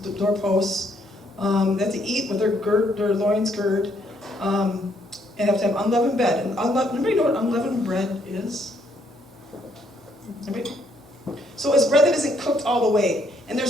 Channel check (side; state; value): both; normal; correlation 0.70